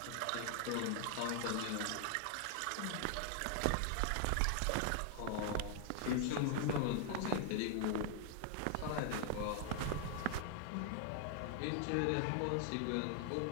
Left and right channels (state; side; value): different; both; correlation 0.00